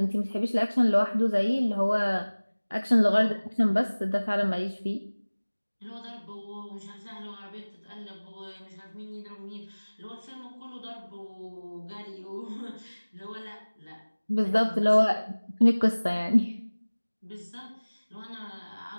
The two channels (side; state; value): both; inverted; correlation -1.00